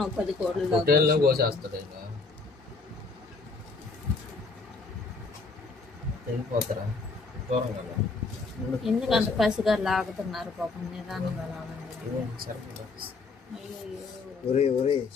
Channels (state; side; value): quieter; right; 4.0 dB